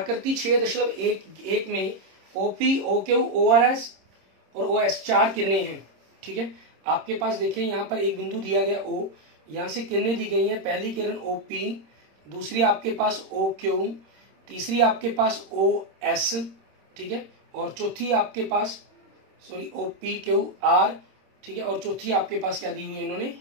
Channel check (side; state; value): left; late; 26 ms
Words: 6.1 में ओपी, ओक्यू, ओआरएस और ओएस 4 किरणें हैं। ठीक है, आपके पास देखिए यहाँ पर एक बिंदु दिया गया O, यहां से किरणें दी गई हैं। पहली किरण OP, दूसरी आपके पास OQ, तीसरी आपके पास OS, ठीक है, और चौथी आपके पास OPQR, ठीक है, और चौथी आपके पास क्या दी हुई है इन्होंने,